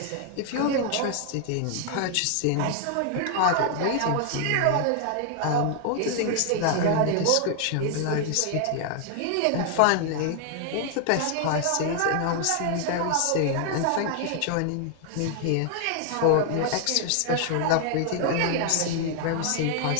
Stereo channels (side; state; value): both; different; correlation 0.00